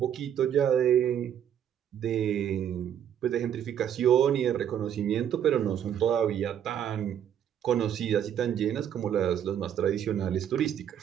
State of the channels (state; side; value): quieter; left; 9.6 dB